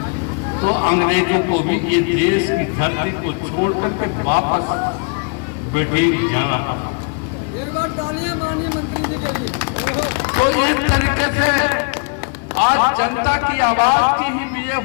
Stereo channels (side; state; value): right; quieter; 37.8 dB